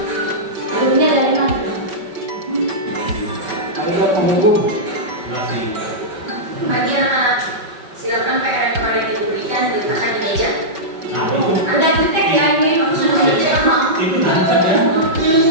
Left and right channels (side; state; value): left; late; 5.3 ms